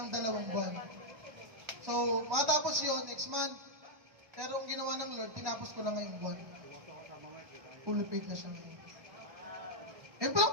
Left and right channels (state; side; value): late; left; 1.1 ms